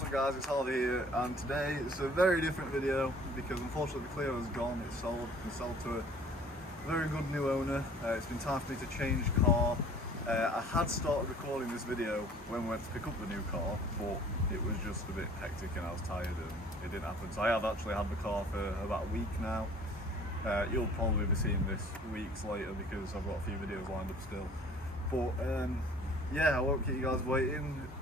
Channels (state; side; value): normal; both; correlation 0.52